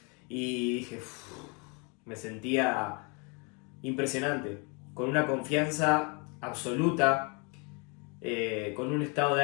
y dije, me sentía impresionante, con una confianza absoluta, con un estado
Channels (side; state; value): right; quieter; 33.0 dB